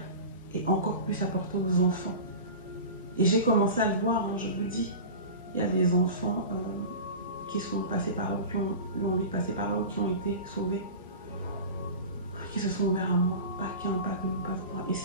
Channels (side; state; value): both; inverted; correlation -0.32